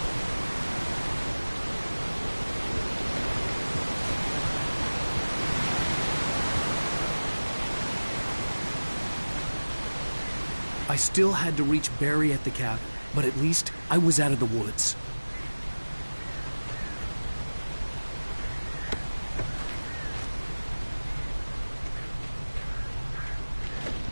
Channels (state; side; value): inverted; both; correlation -1.00